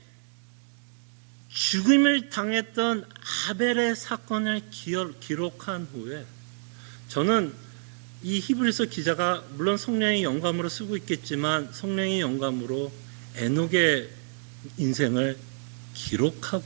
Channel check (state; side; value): silent; left; digital silence